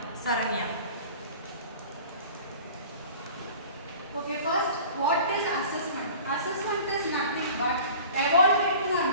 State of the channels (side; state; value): both; inverted; correlation -0.42